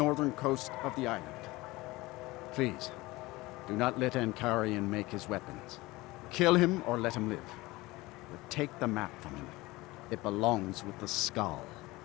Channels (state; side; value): quieter; right; 20.6 dB